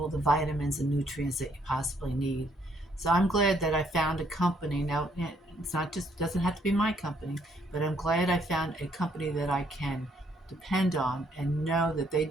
the vitamins and nutrients that you possibly need. So I'm glad that I found a company. Now it's not just doesn't have to be my company, but I'm glad I found a company that I can depend on and know that they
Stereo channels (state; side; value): normal; both; correlation 0.68